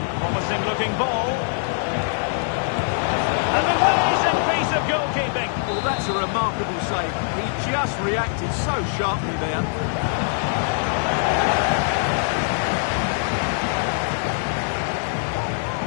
Promising-looking ball. And an amazing piece of goalkeeping. Well, that's a remarkable save. He just reacted so sharply there.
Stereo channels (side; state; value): right; silent; 56 dB below the other